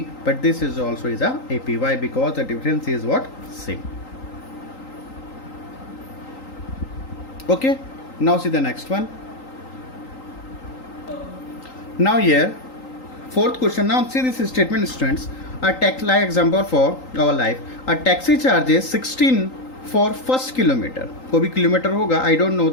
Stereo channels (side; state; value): right; late; 3.8 ms